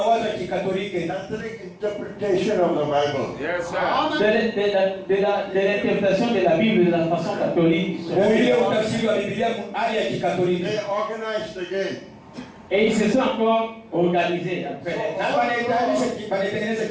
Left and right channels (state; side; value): identical; both; correlation 1.00